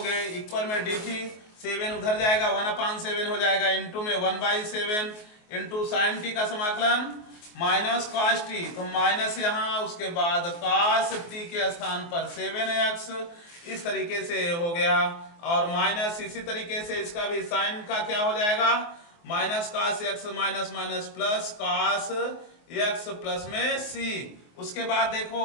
इक्वल में dt, 7 उधर जाएगा 1/7 हो जाएगा इंटू में 1/7 इंटू साइन t का समाकलन माइनस cos t, तो माइनस यहाँ उसके बाद cos t के स्थान पर 7x। इस तरीके से हो गया और माइनस इसी तरीके से इसका भी साइन का क्या हो जाएगा, minus cos x minus minus plus cos x plus में c। उसके बाद देखो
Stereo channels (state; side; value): late; right; 24 ms